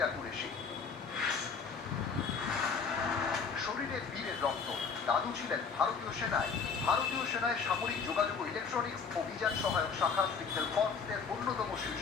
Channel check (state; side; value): quieter; right; 5.7 dB